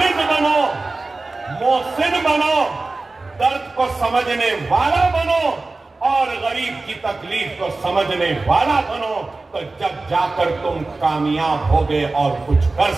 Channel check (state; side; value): quieter; left; 3.4 dB